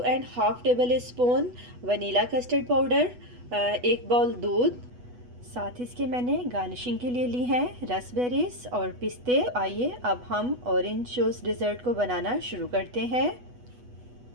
tablespoon vanilla custard powder, 1 bowl दूध। साथ ही इसके मैंने गार्निशिंग के लिए ली हैं रसबेरीज और पिस्ते। आइए अब हम ऑरेंज जूस डिज़र्ट को बनाना शुरू करते हैं।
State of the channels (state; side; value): late; left; 8.2 ms